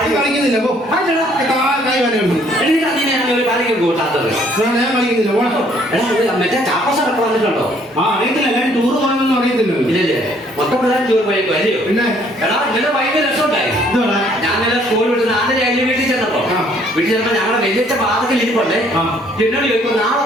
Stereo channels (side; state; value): both; normal; correlation 0.63